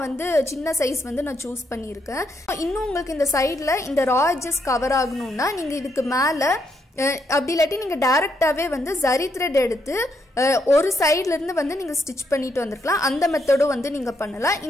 வந்து சின்ன சைஸ் வந்து நான் சூஸ் பண்ணியிருக்கேன். இன்னும் உங்களுக்கு இந்த சைடில் இந்த ரா எட்ஜஸ் கவர் ஆகணும்னா நீங்கள் இதுக்கு மேலே அப்படி இல்லாட்டி நீங்கள் டைரெக்டாகவே வந்து ஜரி த்ரெட் எடுத்து ஒரு சைட்லேருந்து வந்து நீங்கள் ஸ்டிச் பண்ணிட்டு வந்துருக்கலாம். அந்த மெத்தடும் வந்து நீங்கள் பண்ணலாம்,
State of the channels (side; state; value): both; normal; correlation 0.77